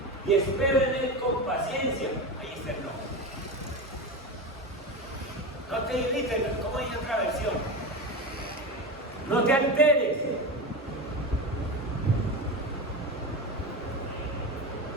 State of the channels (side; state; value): both; normal; correlation 0.22